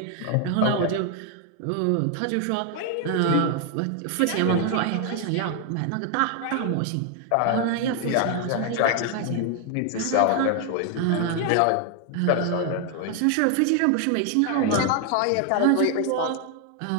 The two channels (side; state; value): both; different; correlation 0.00